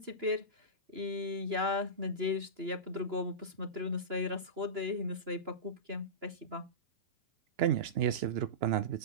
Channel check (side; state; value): left; late; 2.9 ms